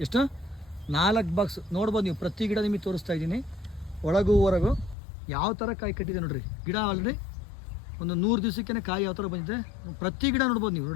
ಎಷ್ಟು? 4 ಬಾಕ್ಸ್ ನೋಡ್ಬೋದು ನೀವು. ಪ್ರತಿ ಗಿಡ ನಿಮಗೆ ತೋರಿಸ್ತಾ ಇದ್ದೀನಿ, ಒಳಗೂ ಹೊರಗು ಯಾವ ಥರ ಕಾಯಿ ಕಟ್ಟಿದೆ ನೋಡ್ರಿ. ಗಿಡ ಆಲ್ರೆಡಿ ಒಂದು 100 ದಿವಸಕ್ಕೇ ಕಾಯಿ ಯಾವ ಥರ ಬಂದಿದೆ. ಪ್ರತಿ ಗಿಡ ನೋಡ್ಬೋದು ನೀವು.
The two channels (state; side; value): drops out; right; at 5.0 s